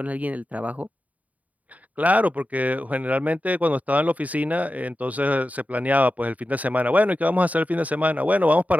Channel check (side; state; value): left; late; 0.072 ms